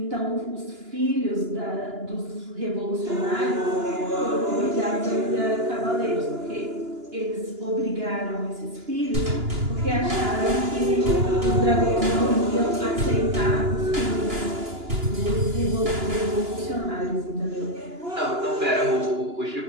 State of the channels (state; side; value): late; left; 2.9 ms